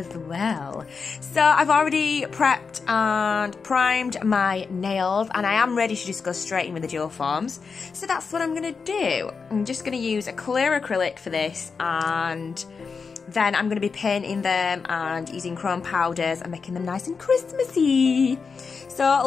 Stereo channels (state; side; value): quieter; right; 5.2 dB